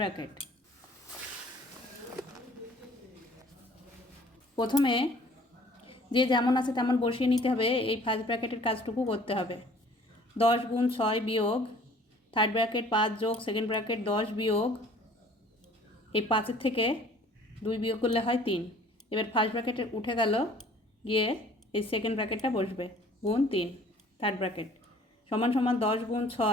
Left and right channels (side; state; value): both; normal; correlation 0.53